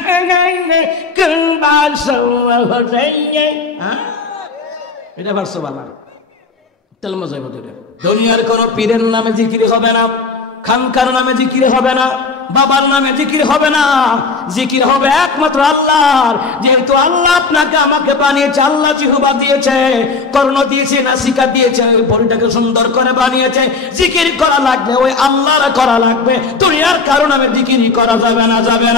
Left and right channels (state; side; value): quieter; right; 4.5 dB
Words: এটা পারছো বালা তেল মজাই বলতে। দুনিয়ার কোন পীরের নামে জিকির হবে না, খানকার নামে জিকির হবে না, বাবার নামে জিকির হবে না, জিকির হবে একমাত্র আল্লাহর। যেহেতু আল্লাহ আপনাকে আমাকে বানিয়েছে, আল্লাহ জিহ্বা দিয়েছে, কর্ণ দিয়েছে, নাসিকা দিয়েছে, বডিটাকে সুন্দর করে বানিয়েছে, জিকির করা লাগবে ওই আল্লাহর করা লাগবে, দুনিয়ার কারো নামে জিকির করা যাবে না, যাবে